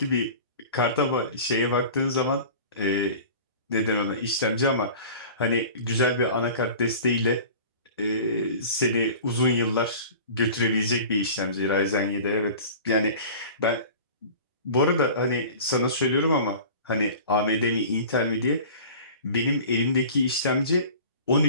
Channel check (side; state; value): both; inverted; correlation -0.40